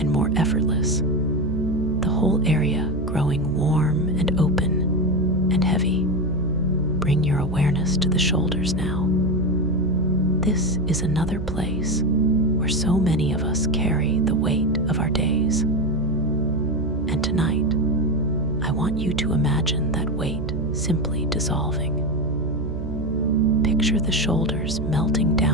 more effortless, the whole area growing warm and open and heavy. Bring your awareness to the shoulders now. This is another place where so many of us carry the weight of our days. And tonight, I want you to imagine that weight simply dissolving. Picture the shoulders melting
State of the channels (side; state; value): right; noise; hum, 6 dB below the sound